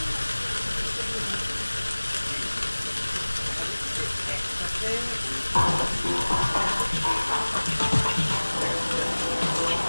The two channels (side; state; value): both; inverted; correlation -1.00